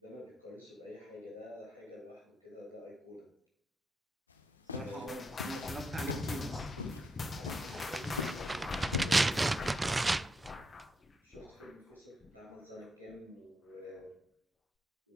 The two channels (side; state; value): both; normal; correlation 0.81